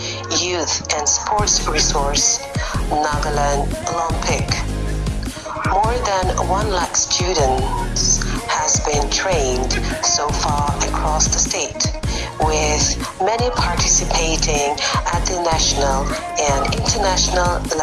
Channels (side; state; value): both; identical; correlation 1.00